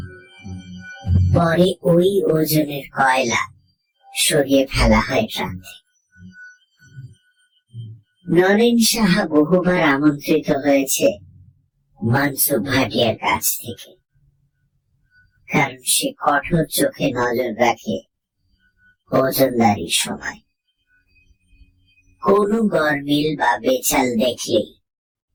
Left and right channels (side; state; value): both; identical; correlation 1.00